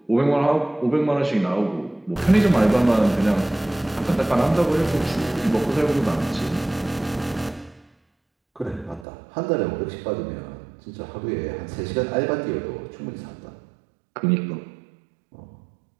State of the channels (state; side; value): drops out; left; at 9.1 s